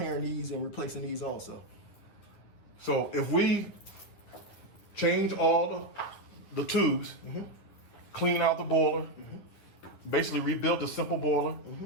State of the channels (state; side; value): late; right; 10 ms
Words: these and replacing these also. So if we change all the tubes, clean out the boiler, basically rebuild the simple boiler,